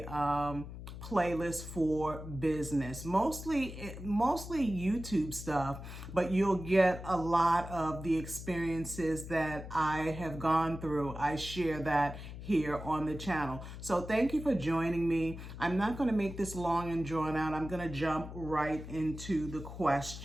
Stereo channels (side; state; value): left; noise; hum, 11 dB below the sound